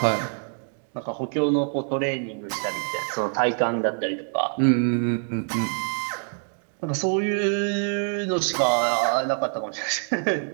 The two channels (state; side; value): silent; left; 56 dB below the other